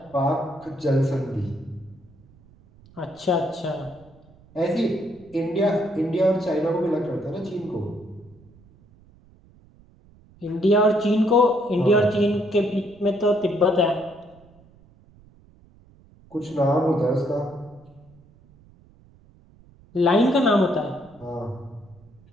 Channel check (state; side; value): noise; right; rumble, 27 dB below the sound